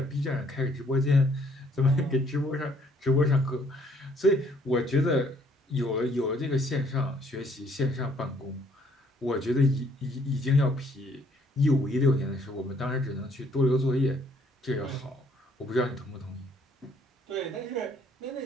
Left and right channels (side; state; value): both; normal; correlation 0.65